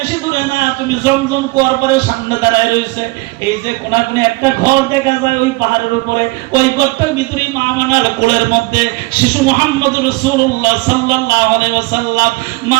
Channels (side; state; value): left; quieter; 23.7 dB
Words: দূরে না, তুমি জমজম কুয়ার পরে সামনে দাঁড়ায় রয়েছে, এই যে কোনাকুনি একটা ঘর দেখা যায় ওই পাহাড়ের উপরে, ওই ঘরটার ভিতরেই মা আমানার কোলের মধ্যে শিশু মুহাম্মদ রাসূলুল্লাহ সাল্লাল্লাহু আলাইহি ওয়াসাল্লাম মা